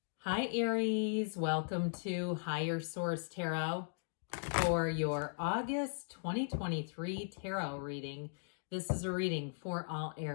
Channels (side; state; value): right; silent; digital silence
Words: Hi Aries, welcome to Higher Source Tarot for your August 2023 tarot reading. This is a reading for all